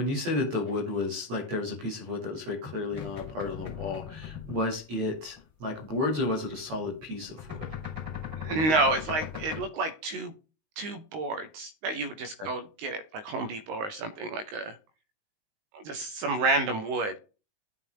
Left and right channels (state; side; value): late; left; 19 ms